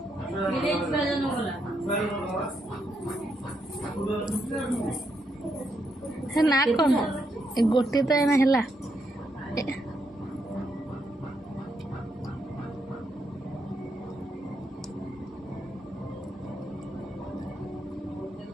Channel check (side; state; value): both; normal; correlation 0.79